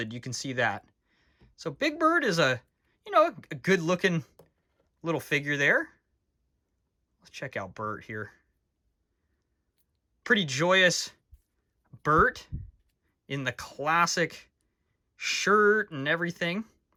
You can see that. So Big Bird is a, you know, a good looking little figure there. Let's check out Bert here. Pretty joyous Bert in the classic shirt and everything.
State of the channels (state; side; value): identical; both; correlation 1.00